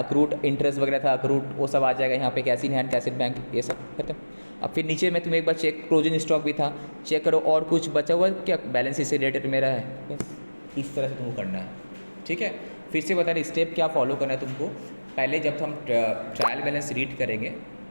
इंटरेस्ट वगैरह था, अक्रूड वो सब आ जाएगा यहाँ पे, cash in hand, cash in bank, ये सब खत्म। अब फिर नीचे में तुम एक बार चेक, क्लोजिंग स्टॉक भी था, चेक करो, और कुछ बचा हुआ क्या, बैलेंस शीट से रिलेटेड मेरा है, बस इस तरह से तुमको करना है, ठीक है। फिर से बता रहे स्टेप क्या फॉलो करना है तुमको, पहले जब हम ट्रायल बैलेंस रीड करेंगे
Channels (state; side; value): inverted; both; correlation -1.00